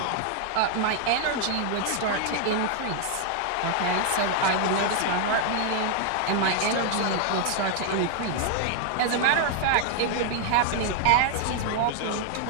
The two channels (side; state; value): both; different; correlation 0.00